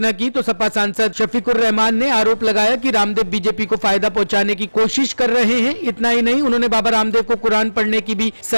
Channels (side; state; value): both; inverted; correlation -1.00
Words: की तो सपा सांसद शफीकुर रहमान ने आरोप लगाया कि रामदेव बीजेपी को फायदा पहुंचाने की कोशिश कर रहे हैं। इतना ही नहीं, उन्होंने बाबा रामदेव को कुरान पढ़ने की भी